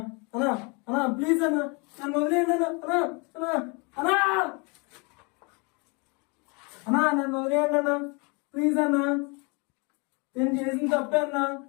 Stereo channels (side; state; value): right; quieter; 31.0 dB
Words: అన్నా అన్నా ప్లీజ్ అన్నా నన్ను వదిలేయండి అన్నా అన్నా అన్నా అన్నా నన్ను వదిలేయండి అన్నా ప్లీజ్ అన్నా నేను చేసిన తప్పే అన్నా